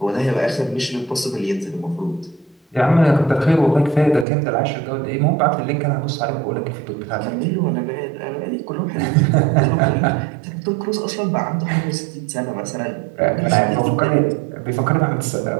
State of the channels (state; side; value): drops out; left; at 4.2 s